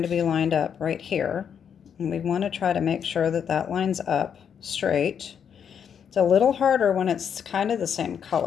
to be lined up right here. And we want to try to make sure that that lines up straight. It's a little harder when it's kind of the same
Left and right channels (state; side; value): quieter; right; 7.8 dB